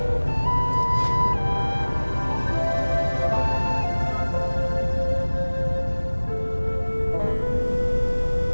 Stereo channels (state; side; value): inverted; both; correlation -1.00